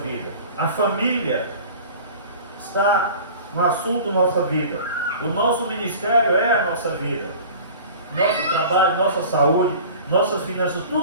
A família está no assunto da nossa vida. O nosso ministério é a nossa vida. Nosso trabalho, nossa saúde, nossas finanças,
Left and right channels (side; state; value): both; inverted; correlation -0.41